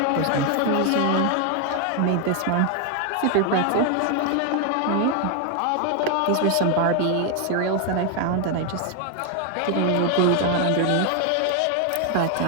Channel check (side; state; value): both; different; correlation 0.01